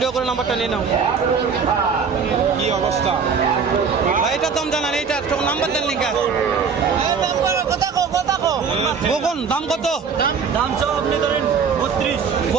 করে নাম্বারটা নিয়ে নাও। কি অবস্থা ভাই? এটার দাম জানান, এইটার নাম্বার দেন লিখা। কখন দাম কত? দাম সব আপনি ধরেন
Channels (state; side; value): quieter; left; 6.0 dB